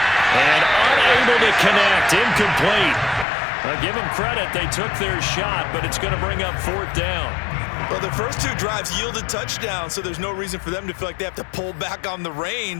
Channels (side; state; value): right; drops out; at 3.2 s